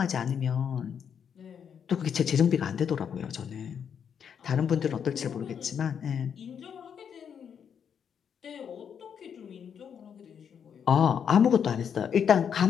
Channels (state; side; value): quieter; right; 7.7 dB